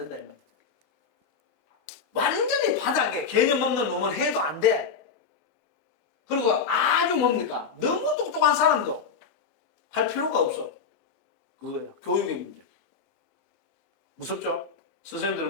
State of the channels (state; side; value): quieter; right; 5.7 dB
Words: 이 말이야. 완전히 바닥에 개념 없는 놈은 해도 안 돼. 그리고 아주 뭡니까? 너무 똑똑한 사람도 할 필요가 없어. 그거예요. 교육의 문제. 무섭죠?